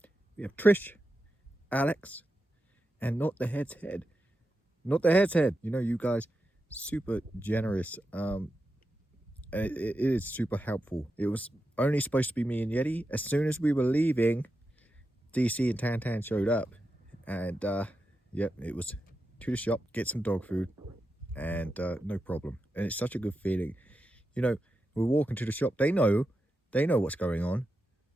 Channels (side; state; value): both; normal; correlation 0.89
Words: we have Trish, Alex, and Not the Head's Head. Not the Head's Head. You know, you guys, super generous. It is super helpful. It was only supposed to be me and Yeti. As soon as we were leaving, DC and Tantan showed up. And, yep, it was to the shop, get some dog food, and no problem. And it's such a good feeling. You know, we're walking to the shop. They know what's going on.